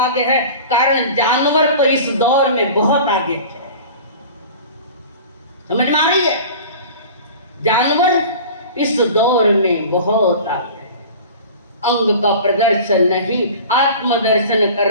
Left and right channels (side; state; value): both; inverted; correlation -0.39